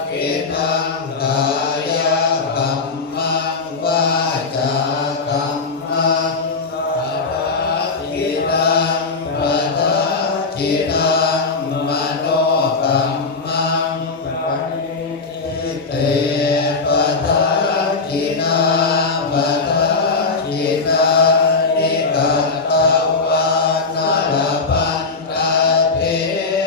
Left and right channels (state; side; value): quieter; right; 4.1 dB